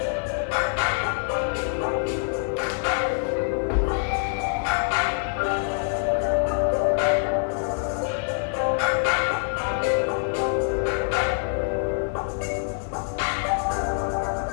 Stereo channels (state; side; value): silent; right; 61 dB below the other